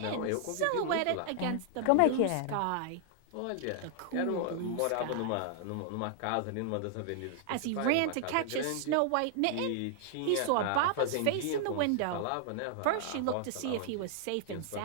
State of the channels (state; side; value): different; both; correlation -0.01